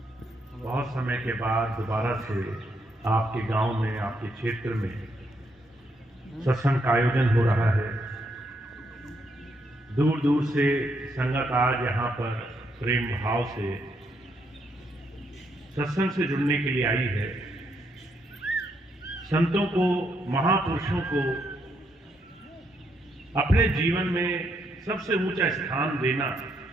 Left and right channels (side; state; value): both; normal; correlation 0.76